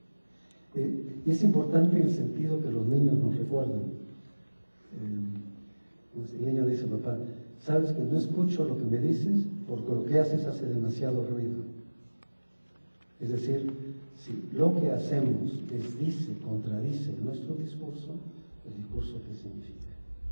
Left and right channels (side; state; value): both; inverted; correlation -1.00